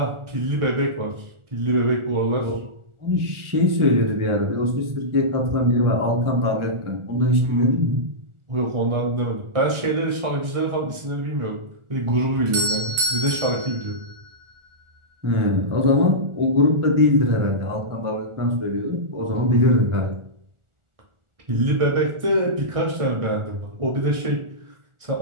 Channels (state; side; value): late; left; 1.4 ms